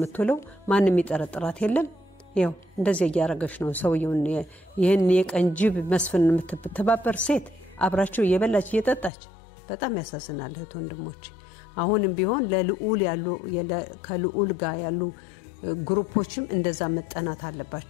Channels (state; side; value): drops out; right; at 9.1 s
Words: ማንም ይጠረጥራት የለም ያው እንደዚህ ያያረገሽ ነው ሰውየውን ይሄን የቀንጅብ መስፍን የምትተባበር ሴት አብራቸው እየበላች እየጠጣች በጣም ያሳዝናል እህት ወንድሞች አሁንም ቢሆን ለልዑል ያሉ ከልዑል ጋር ያሉ ግሩፖችም እንደዛ መጠናት